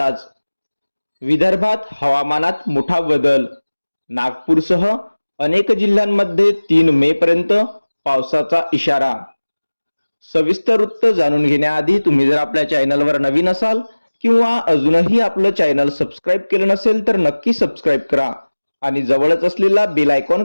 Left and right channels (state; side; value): inverted; both; correlation -1.00